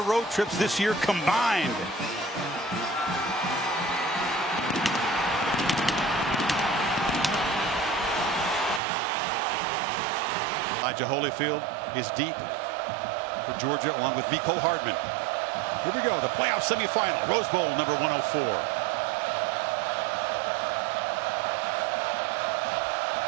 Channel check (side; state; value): left; drops out; at 8.8 s